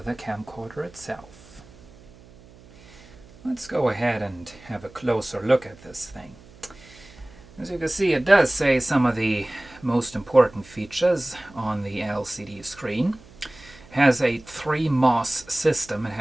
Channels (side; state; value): right; noise; hum, 23 dB below the sound